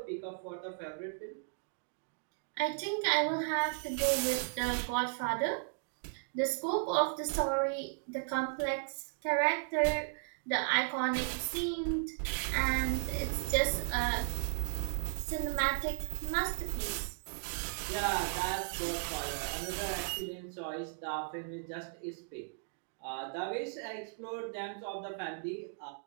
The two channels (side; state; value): left; silent; digital silence